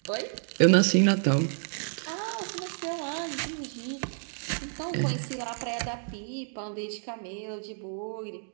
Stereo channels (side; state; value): left; silent; digital silence